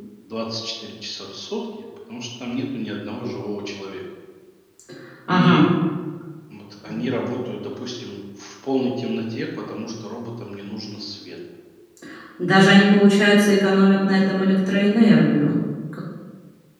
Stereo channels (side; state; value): both; identical; correlation 1.00